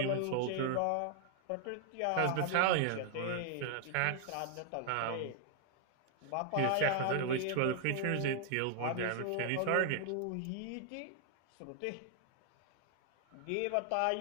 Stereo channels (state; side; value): different; both; correlation 0.00